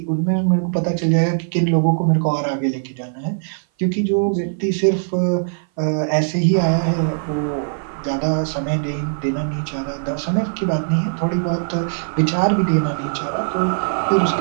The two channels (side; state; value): left; silent; 58 dB below the other